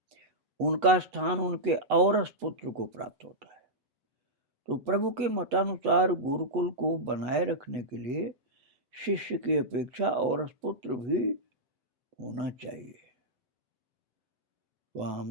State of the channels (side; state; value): left; late; 8.1 ms